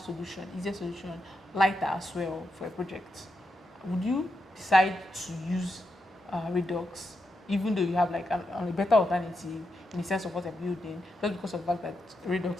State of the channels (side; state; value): both; normal; correlation 0.85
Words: easier solution, lighter as well for a project. Would you decide to use Redux, even though you have like a better alternative in the sense of what you're building, just because of the fact that